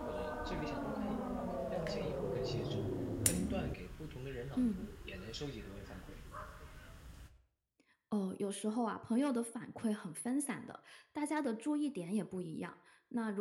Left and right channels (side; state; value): both; identical; correlation 1.00